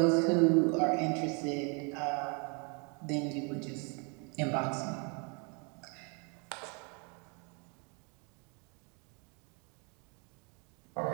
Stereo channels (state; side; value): quieter; left; 34.3 dB